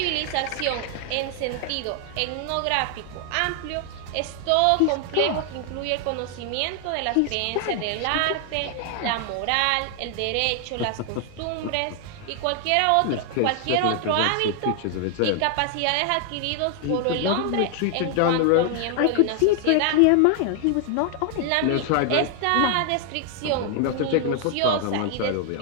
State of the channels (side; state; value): both; different; correlation 0.00